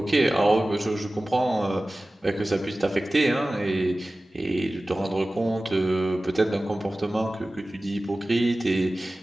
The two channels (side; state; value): both; normal; correlation 0.97